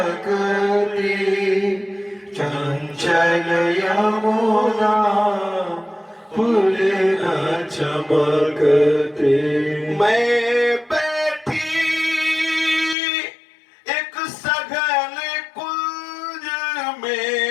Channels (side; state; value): right; drops out; at 13.0 s